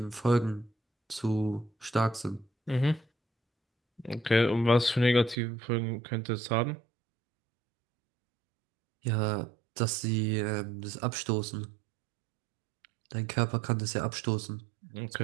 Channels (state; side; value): drops out; left; at 5.4 s